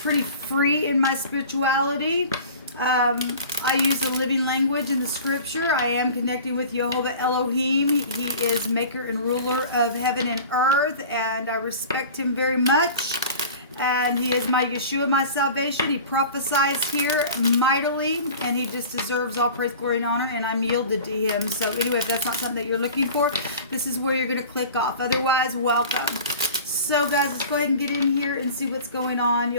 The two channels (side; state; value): both; inverted; correlation -0.40